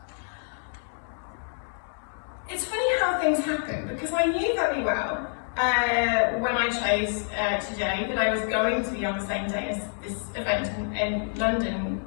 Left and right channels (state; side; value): silent; right; digital silence